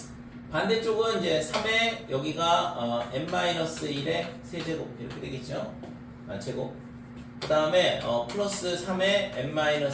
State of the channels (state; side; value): identical; both; correlation 1.00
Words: 반대쪽은 이제 3의 여기가 n-1의 세제곱 이렇게 되겠죠. 제곱. 그 다음에 플러스 3의